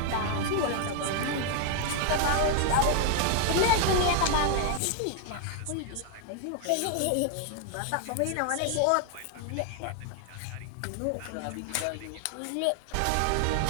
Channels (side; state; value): both; different; correlation 0.00